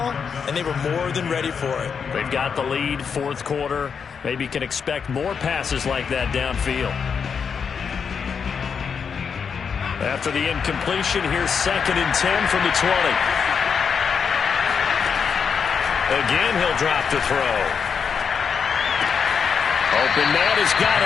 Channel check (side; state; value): right; quieter; 6.4 dB